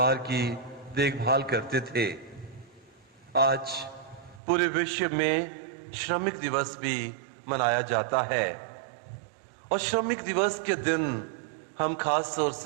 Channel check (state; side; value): drops out; left; at 4.4 s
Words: की देखभाल करते थे। आज पूरे विश्व में श्रमिक दिवस भी मनाया जाता है और श्रमिक दिवस के दिन हम खास तौर